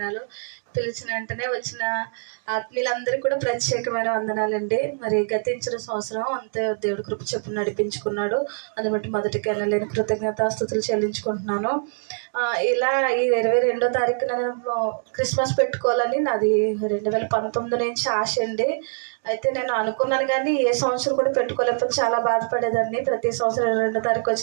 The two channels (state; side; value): silent; left; digital silence